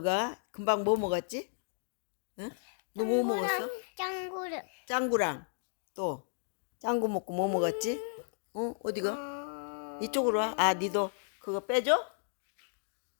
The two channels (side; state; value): right; silent; digital silence